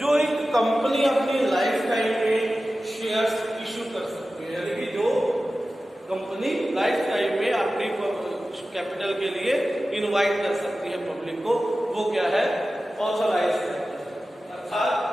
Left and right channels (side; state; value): both; normal; correlation 0.95